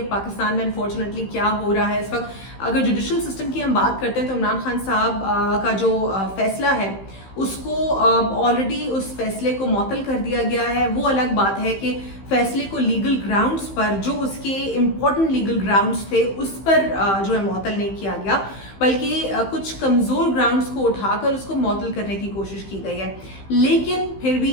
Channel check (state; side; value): late; right; 15 ms